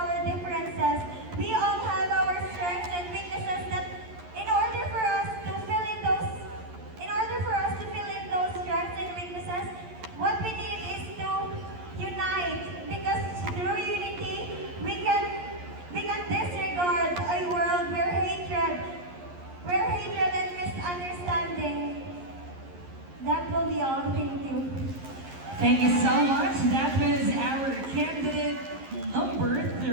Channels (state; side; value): late; left; 11 ms